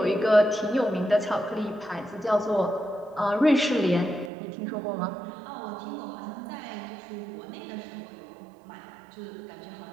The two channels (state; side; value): drops out; left; at 4.3 s